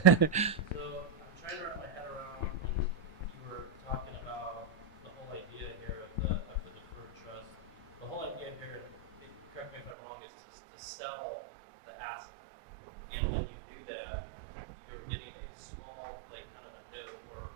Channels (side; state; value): left; drops out; at 9.9 s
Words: I'm trying to wrap my head around when you were talking about the whole idea here of the deferred trust. The whole idea here, correct me if I'm wrong, is to sell the asset. And when you do that, you're getting a small, like kind of a note